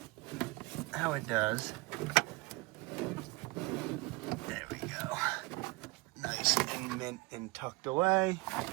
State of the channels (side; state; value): left; quieter; 24.1 dB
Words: how it does. There we go. Nice and mint and tucked away.